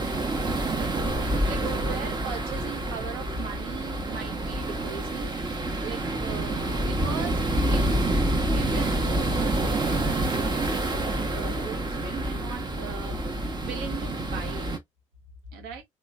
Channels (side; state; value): both; normal; correlation 0.66